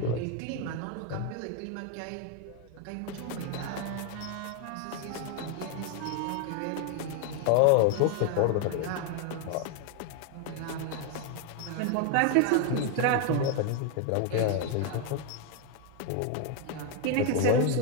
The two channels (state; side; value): different; both; correlation 0.01